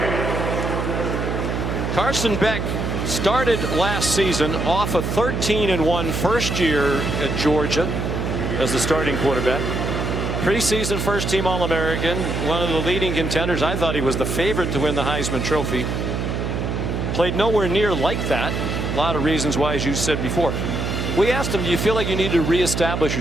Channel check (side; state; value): right; noise; hum, 2 dB below the sound